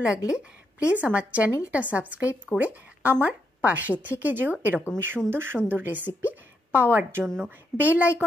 লাগলে প্লিজ আমার চ্যানেলটা সাবস্ক্রাইব করে আমার পাশে থেকে যেও এরকমই সুন্দর সুন্দর রেসিপি পাওয়ার জন্য। বেল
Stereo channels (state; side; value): normal; both; correlation 0.80